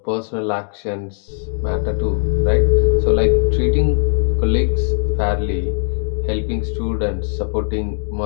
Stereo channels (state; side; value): silent; right; digital silence